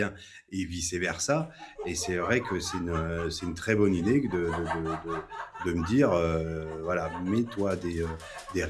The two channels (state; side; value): identical; both; correlation 1.00